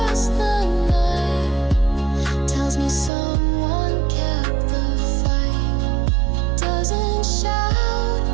the night tells me someone kept the fight. Doesn't shout,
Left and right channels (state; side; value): drops out; left; at 3.1 s